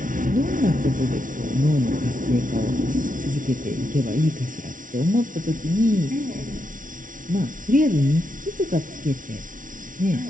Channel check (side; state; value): left; late; 0.38 ms